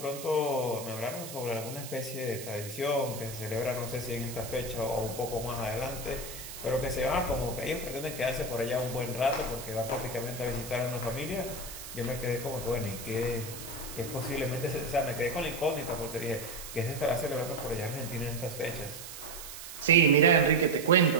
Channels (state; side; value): noise; right; hiss, 11 dB below the sound